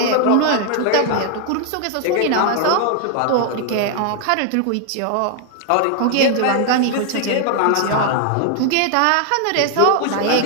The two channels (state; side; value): different; both; correlation 0.00